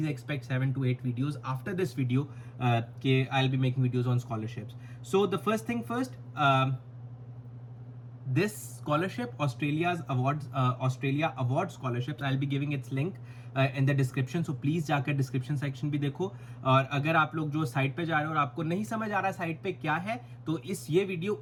expect 7 to 8 videos after this video. I'll be making videos on scholarships. So the first thing first, this scholarship, Australia Award Scholarships, I'll be giving its link in the description, so please जाकर description section भी देखो. और अगर आप लोग जो साइट पे जा रहे हो और आपको नहीं समझ आ रहा साइट पे क्या है, तो ये वीडियो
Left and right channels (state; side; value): identical; both; correlation 1.00